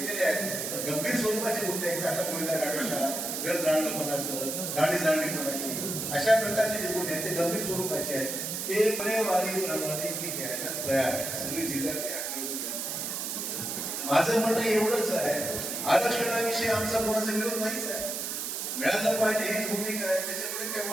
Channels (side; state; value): right; noise; hiss, 3 dB below the sound